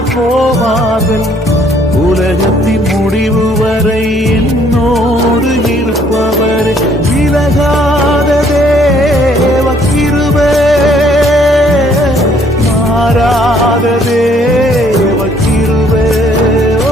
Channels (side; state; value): both; normal; correlation 0.63